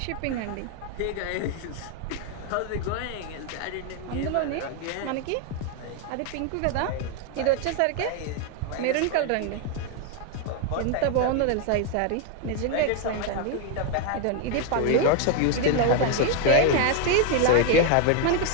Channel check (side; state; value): both; different; correlation 0.01